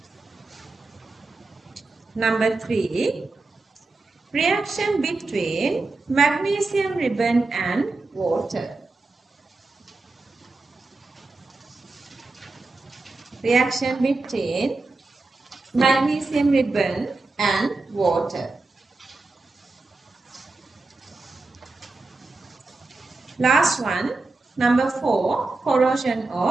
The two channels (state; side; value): quieter; left; 3.4 dB